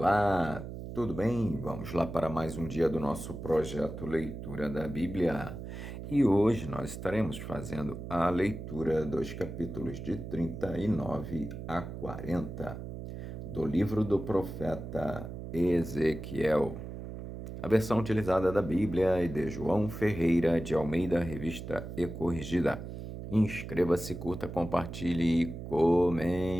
tudo bem? Vamos lá para mais um dia do nosso projeto Leitura da Bíblia. E hoje nós estaremos fazendo a leitura dos capítulos de 39 a 40 do livro do profeta Ezequiel. A versão utilizada da Bíblia é de João Ferreira de Almeida, revista e corrigida. Inscreva-se, curta, compartilhe e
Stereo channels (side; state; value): right; noise; hum, 9 dB below the sound